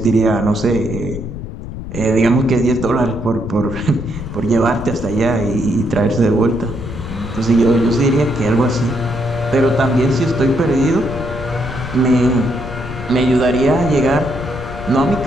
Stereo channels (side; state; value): left; noise; rumble, 9 dB below the sound